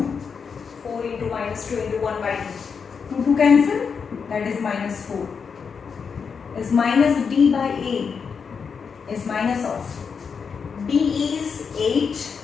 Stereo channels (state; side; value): quieter; right; 6.0 dB